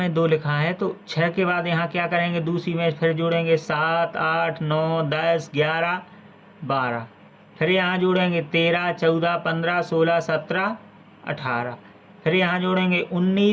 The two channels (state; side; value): identical; both; correlation 1.00